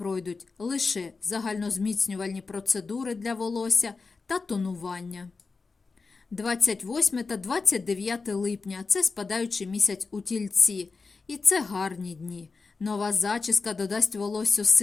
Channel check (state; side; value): quieter; right; 4.3 dB